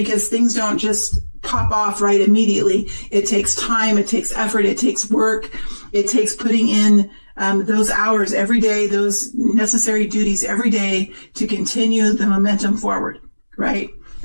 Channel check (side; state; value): both; inverted; correlation -1.00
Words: things don't just pop off right immediately. It takes time, it takes effort, it takes work, it takes putting in those hours every day, those necessary duties every day to continue the momentum forward, right?